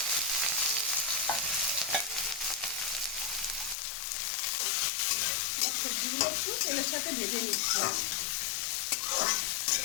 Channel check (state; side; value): drops out; right; at 3.8 s